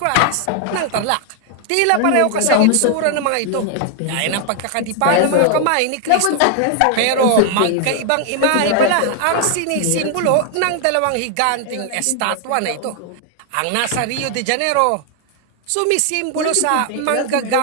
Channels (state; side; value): different; both; correlation 0.00